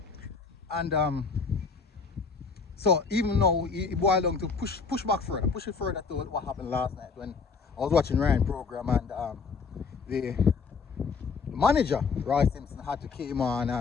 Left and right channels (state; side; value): quieter; right; 5.0 dB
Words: And so even now, he boiled down to push it further to what happened last night when I was watching Ryan program, and the manager Roy Simpson had to came on